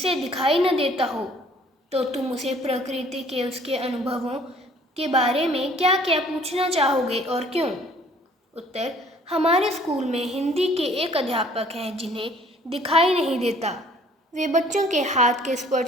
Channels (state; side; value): normal; both; correlation 0.56